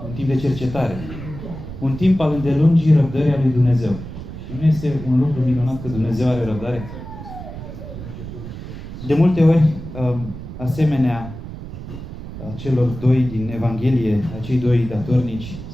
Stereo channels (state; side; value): noise; right; rumble, 11 dB below the sound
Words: un timp de cercetare, un timp al îndelungii răbdării a lui Dumnezeu. Și nu este un lucru minunat că Dumnezeu are răbdare? De multe ori, asemenea celor doi din Evanghelie, acei doi datornici,